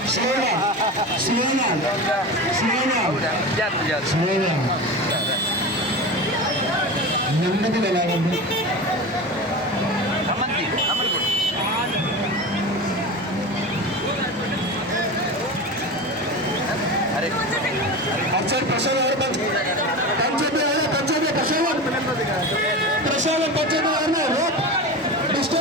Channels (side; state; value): both; normal; correlation 0.27